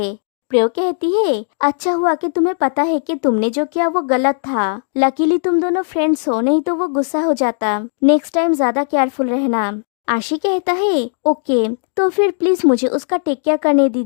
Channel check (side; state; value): right; silent; digital silence